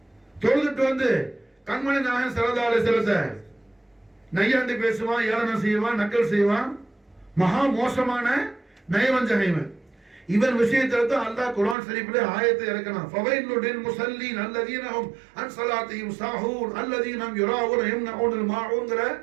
தொழுதுட்டு வந்து கண்மணி நாயகம் ஸல்லல்லாஹு அலைஹி வஸல்லம் நையாண்டி பேசுவான், ஏளனம் செய்வான், நக்கல் செய்வான், மகா மோசமான நயவஞ்சகைவன். இவன் விஷயத்துல தான் அல்லாஹ் குர்ஆன் ஷரீஃப்ல ஆயத்தை இறக்கணும். ஃபவைலுல் முஸல்லீன் அல்லதீன ஹும் அன் ஸலாத்திஹிம் சாஹூன் அல்லதீன ஹும் யுராஊன யம்னஊனல் மாஊன்ங்கற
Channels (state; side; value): drops out; left; at 11.8 s